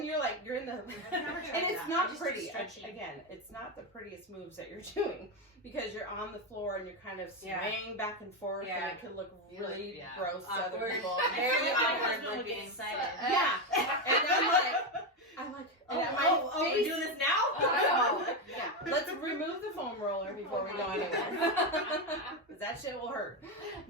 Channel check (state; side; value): normal; both; correlation 0.10